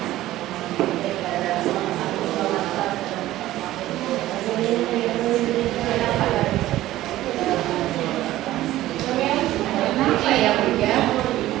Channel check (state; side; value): quieter; left; 15.1 dB